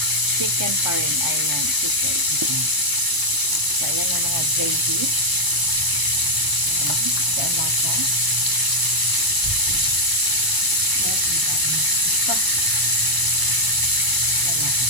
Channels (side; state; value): left; late; 1.0 ms